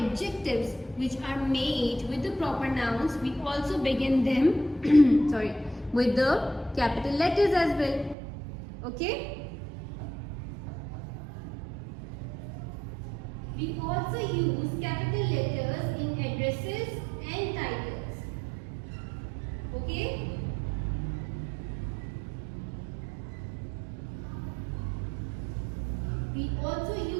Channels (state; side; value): drops out; left; at 8.2 s